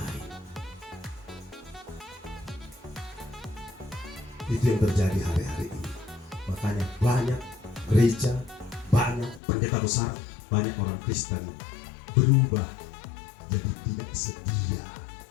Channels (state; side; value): drops out; right; at 9.4 s